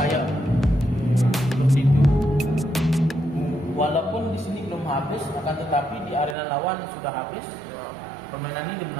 Seperti itu. Walaupun di sini belum habis, akan tetapi di arena lawan sudah habis. Permainan ini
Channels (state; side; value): drops out; left; at 6.4 s